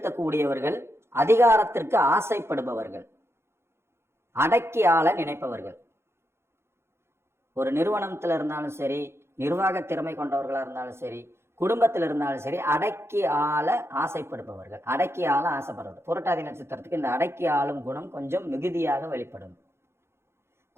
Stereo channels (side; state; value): left; late; 0.12 ms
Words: அதிகாரத்திற்கு ஆசைப்படுபவர்கள், அடக்கி ஆள நினைப்பவர்கள். ஒரு நிறுவனத்துல இருந்தாலும் சரி, நிர்வாக திறமை கொண்டவர்களா இருந்தாலும் சரி, குடும்பத்தில் இருந்தாலும் சரி, அடக்கி ஆள ஆசைப்படுபவர்கள், அடக்கி ஆள ஆசைப்படுறது. புரட்டாதி நட்சத்திரத்துக்கு இந்த அடக்கி ஆளும் குணம் கொஞ்சம் மிகுதியாக வெளிப்படும்.